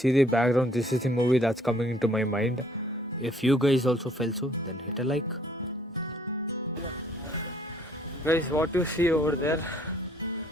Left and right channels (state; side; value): normal; both; correlation 0.62